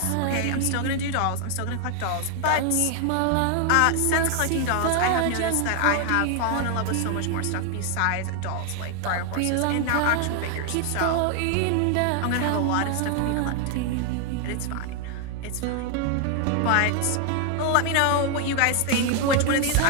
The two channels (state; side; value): different; both; correlation 0.00